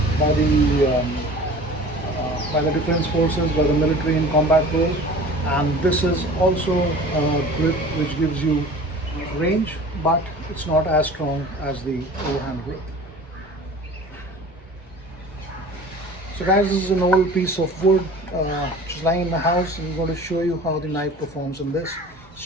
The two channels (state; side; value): normal; both; correlation 0.42